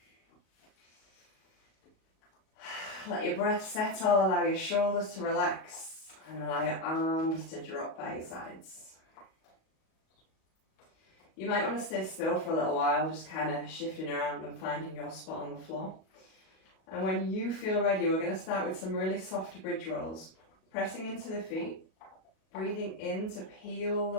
Let your breath settle, allow your shoulders to relax, and allow your arms to drop by your sides. You might want to stay still for a little while, just kind of shifting around and finding your spot on the floor. And when you feel ready, we're going to start with some really soft bridge rolls. Pressing into the feet, breathing in to peel the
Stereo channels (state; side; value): late; right; 37 ms